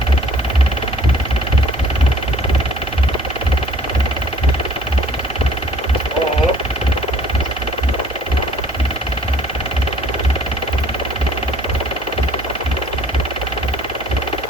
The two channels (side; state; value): both; normal; correlation 0.54